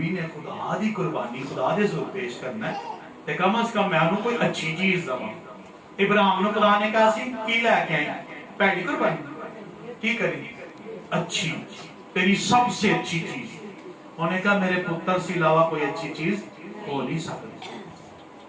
نے خدا دی قربانی خدا دے ذریعے پیش کرنا ہے، تو کم از کم میں انہوں کوئی اچھی چیز دوں. ابراہیم نے خدا نے کہا سی کی لے کے آئیں؟ پہلی قربانی کی کریں؟ اچھی، تیری سب سے اچھی چیز. انہوں نے کہا میرے پتر سے علاوہ کوئی اچھی چیز ہو نہیں سکتی.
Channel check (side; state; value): both; identical; correlation 1.00